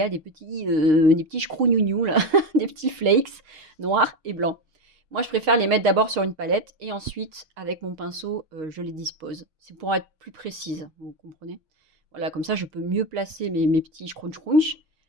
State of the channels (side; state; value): left; late; 6.5 ms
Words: des petits chkrougnougnous, là, des petits flakes noirs et blancs. Moi, je préfère les mettre d'abord sur une palette et ensuite, avec mon pinceau, je les dispose. C'est pour être plus précise, vous comprenez? Voilà, comme ça, je peux mieux placer mes petits scrunch